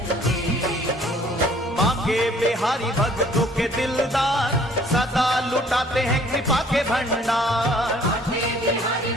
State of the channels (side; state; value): both; normal; correlation 0.57